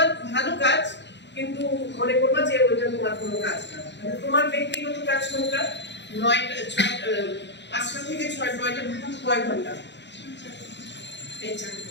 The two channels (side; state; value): right; late; 0.52 ms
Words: ভালো কাজ, কিন্তু মনে করবা যে ওইটা তোমার কোনো কাজ না। মানে তোমার ব্যক্তিগত কাজ কোনটা? 5টা থেকে 9টা কয় ঘন্টা এই